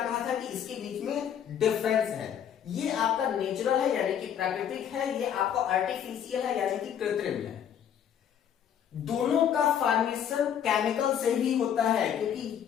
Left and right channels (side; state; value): right; quieter; 9.0 dB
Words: था कि इसके बीच में डिफरेंस है। ये आपका नेचुरल है यानी कि प्राकृतिक है, ये आपका आर्टिफिशियल है यानी कि कृत्रिम है। दोनों का फॉर्मेशन केमिकल से ही होता है,